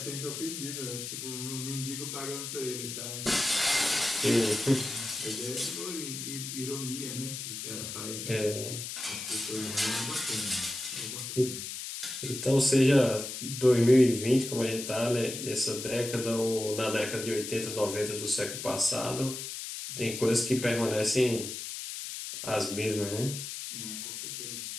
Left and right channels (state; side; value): noise; left; hiss, 7 dB below the sound